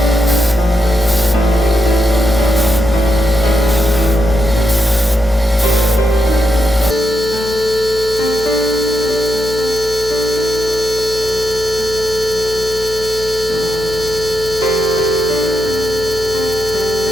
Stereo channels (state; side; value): noise; left; hum, 13 dB below the sound